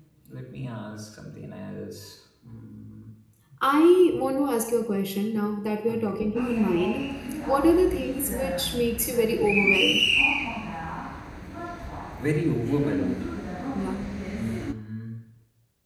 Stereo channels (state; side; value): identical; both; correlation 1.00